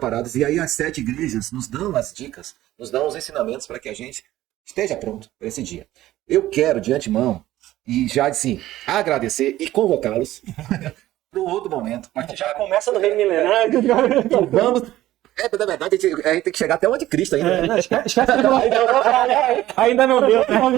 E aí as 7 igrejas nos dão as dicas, nos dão os ensinamentos para que a gente esteja pronto para esse dia. Eu quero, de antemão, e já assim, agradecer e convocá-los para um outro momento. Já começa no reino milenário. Vamos... na verdade, a gente tem que chegar até o anticristo ainda. Não, esquece ainda não deu.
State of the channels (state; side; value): quieter; left; 14.9 dB